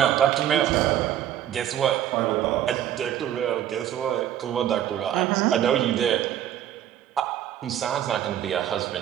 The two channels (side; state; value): left; quieter; 11.1 dB